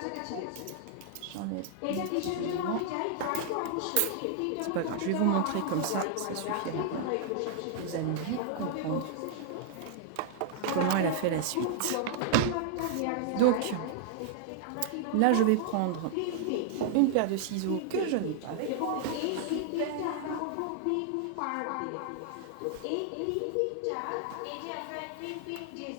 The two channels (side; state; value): both; different; correlation -0.01